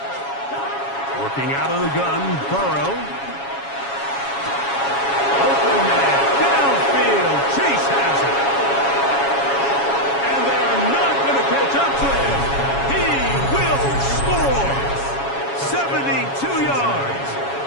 Working out of the gun, Burrow. Open man, downfield, Chase has it. And they're not going to catch up to him. He will score. 72 yards.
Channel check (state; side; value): late; right; 7.2 ms